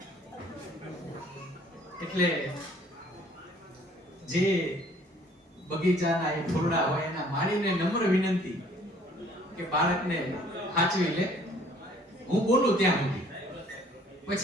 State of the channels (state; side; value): normal; both; correlation 0.57